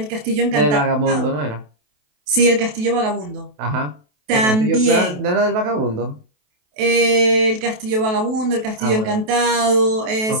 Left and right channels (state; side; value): late; left; 28 ms